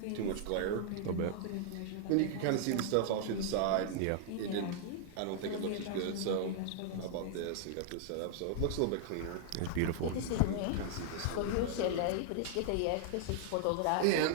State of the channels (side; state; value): both; different; correlation -0.01